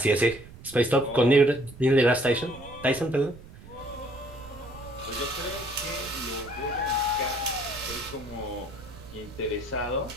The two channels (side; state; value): right; noise; rumble, 17 dB below the sound